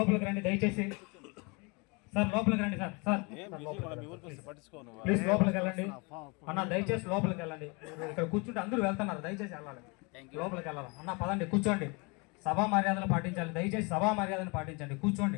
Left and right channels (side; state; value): right; quieter; 29.8 dB